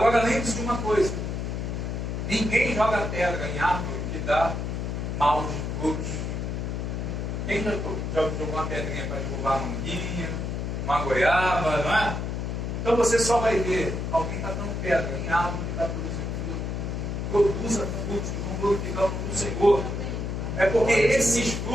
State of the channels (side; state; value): left; noise; hum, 3 dB below the sound